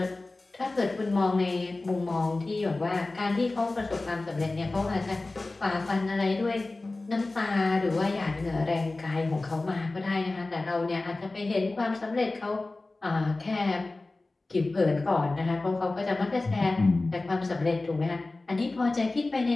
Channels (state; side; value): quieter; right; 3.1 dB